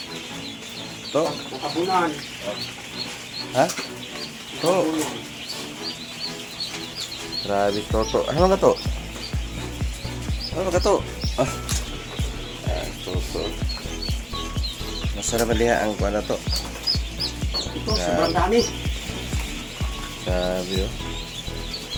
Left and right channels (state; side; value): identical; both; correlation 1.00